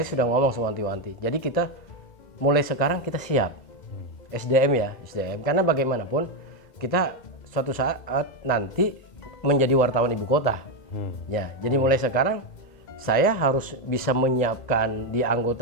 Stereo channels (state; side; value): late; right; 2.1 ms